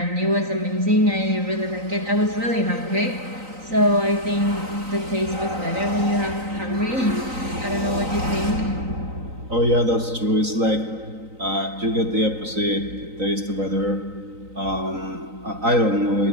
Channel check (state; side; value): late; left; 3.9 ms